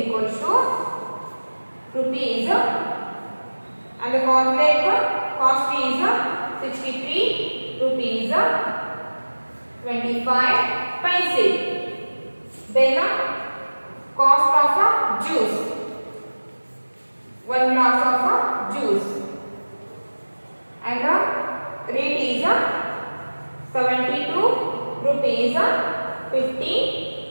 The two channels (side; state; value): both; inverted; correlation -1.00